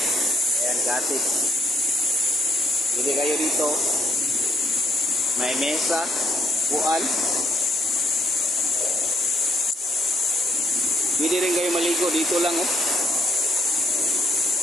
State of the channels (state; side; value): normal; both; correlation 0.69